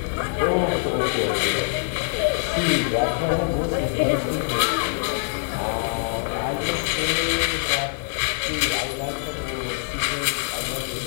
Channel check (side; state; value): right; silent; 62 dB below the other